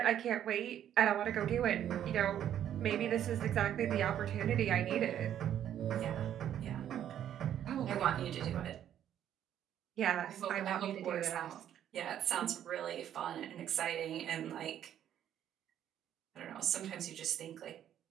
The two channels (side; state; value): left; quieter; 10.5 dB